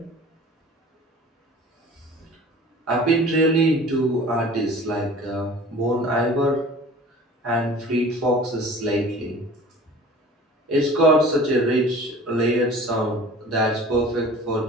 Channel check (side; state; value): both; normal; correlation 0.44